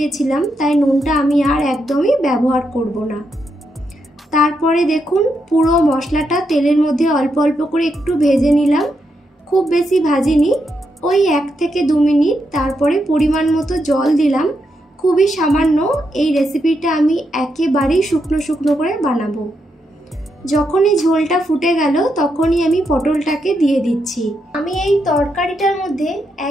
তাই নুনটা আমি আর একদমই ব্যবহার করব না। তারপরে দেখুন পুরো মশলাটা তেলের মধ্যে অল্প অল্প করে একটু ভেজে নিলাম, খুব বেশি ভাজিনি, ওই 1 থেকে 2 মিনিট। তারপরে পরিমাণ মতো জল দিলাম, খুবই সামান্য। এই রেসিপিটা আমি একেবারেই শুকনো শুকনো করে বানাবো। যখনই ঝোলটা ফুটে গেল তখনই আমি পটলটাকে দিয়ে দিচ্ছি। আমি এই তরকারিটার মধ্যে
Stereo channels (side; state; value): both; normal; correlation 0.82